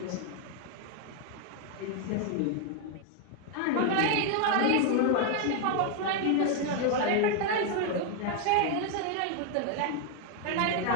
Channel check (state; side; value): different; both; correlation 0.00